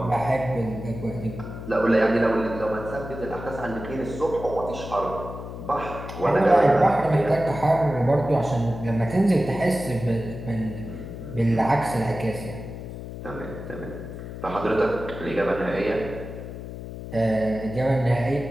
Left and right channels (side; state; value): left; noise; hum, 10 dB below the sound